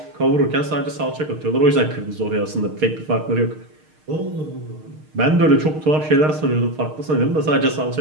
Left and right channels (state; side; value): late; left; 6.5 ms